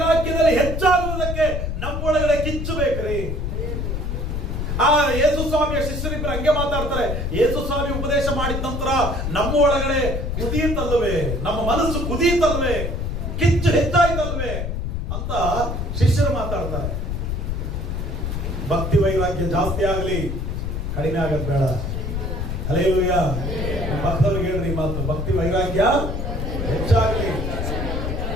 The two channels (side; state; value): left; noise; rumble, 2 dB below the sound